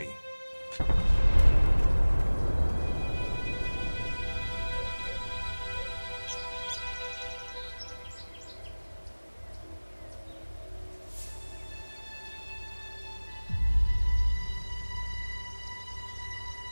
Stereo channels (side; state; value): both; inverted; correlation -1.00